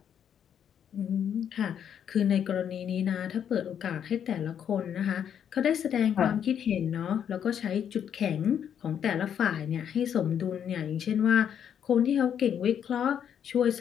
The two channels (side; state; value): right; quieter; 8.8 dB